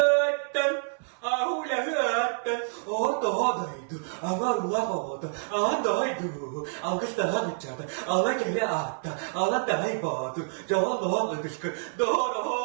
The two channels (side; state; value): left; silent; digital silence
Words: ahulahatan otodaydı amarulahota andaydı algıstaha gıçada ala gele atta ala daybadı joğalloğa ıdışkı